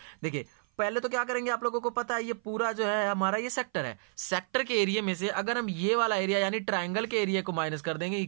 देखिए पहले तो क्या करेंगे, आप लोगों को पता है ये पूरा जो है हमारा ये सेक्टर है, सेक्टर के एरिया में से अगर हम ये वाला एरिया यानी ट्राइंगल के एरिया को माइनस कर देंगे,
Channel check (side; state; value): left; silent; 55 dB below the other